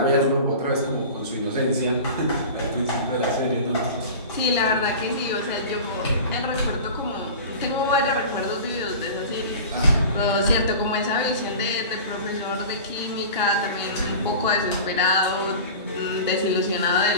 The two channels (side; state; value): both; inverted; correlation -0.36